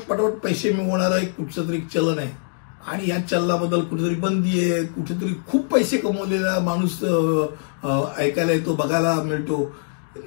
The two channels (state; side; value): silent; right; digital silence